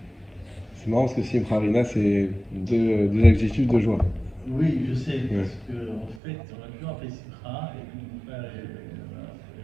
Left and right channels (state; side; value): drops out; left; at 6.2 s